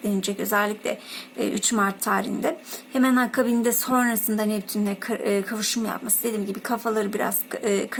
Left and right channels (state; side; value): identical; both; correlation 1.00